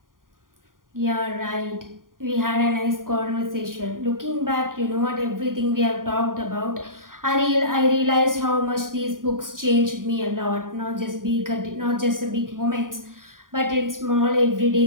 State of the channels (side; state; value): left; late; 0.90 ms